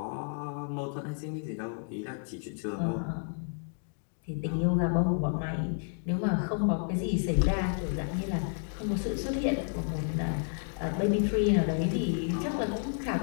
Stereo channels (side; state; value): right; silent; 57 dB below the other